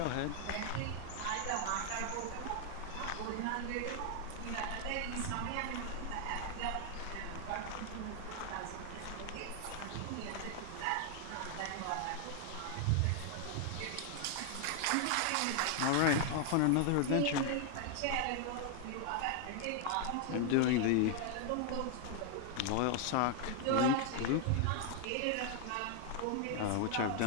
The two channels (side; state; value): both; different; correlation 0.00